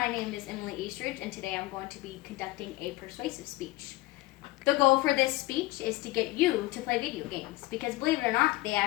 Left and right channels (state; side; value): quieter; right; 19.3 dB